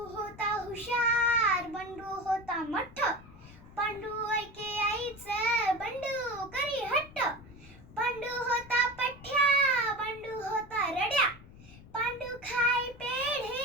होता हुशार, बंडू होता मठ्ठ. पांडू ऐके आईचं, बंडू करी हट्ट. पांडू होता पठ्या, बंडू होता रड्या. पांडू खाय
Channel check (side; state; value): left; noise; rumble, 20 dB below the sound